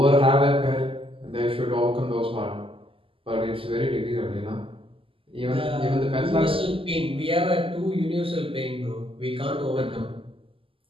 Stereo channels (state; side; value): late; left; 0.26 ms